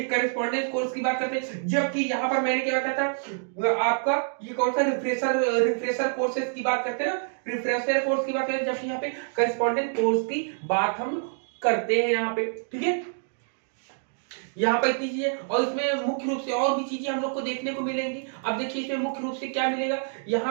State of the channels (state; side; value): silent; left; digital silence